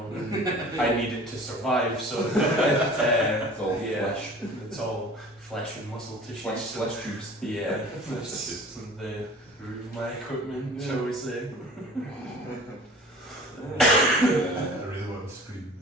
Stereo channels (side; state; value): both; normal; correlation 0.44